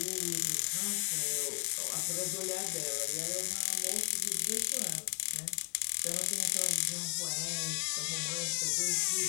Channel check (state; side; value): quieter; right; 38.1 dB